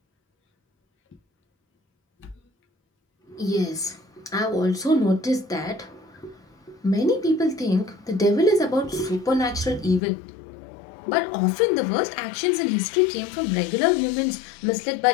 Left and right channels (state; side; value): drops out; right; at 10.0 s